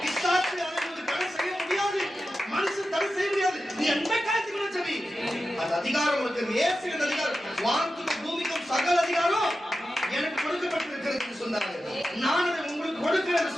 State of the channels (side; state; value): both; normal; correlation 0.92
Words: பிசாசு அதை தடை செய்ய முடியாது, மனுஷன் தடை செய்ய முடியாது. நீ எந்த காரியத்துக்கு ஜெபி, அந்த அதிகாரம் உனக்கு இயேசுவின் அதிகாரம். வானத்துக்கும் பூமிக்கும் சகல அதிகாரம் எனக்கு கொடுக்கப்பட்டிருக்கிறது என்று சொன்னார். நான் அதை உங்களுக்கு கொடுக்கிறேன்